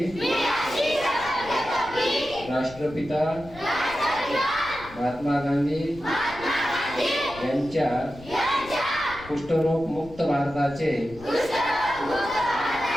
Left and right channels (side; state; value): left; noise; rumble, 18 dB below the sound